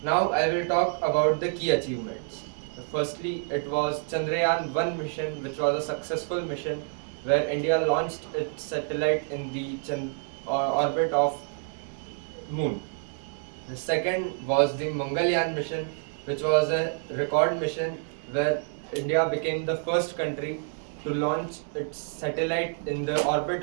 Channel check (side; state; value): left; silent; 59 dB below the other